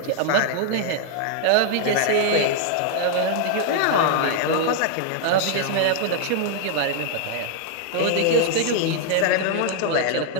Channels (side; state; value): both; different; correlation 0.00